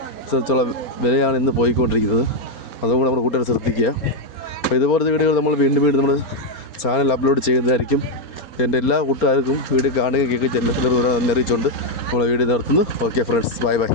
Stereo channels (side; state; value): right; late; 4.3 ms